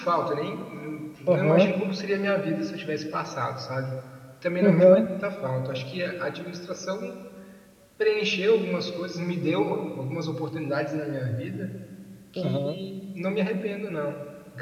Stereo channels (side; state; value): both; identical; correlation 1.00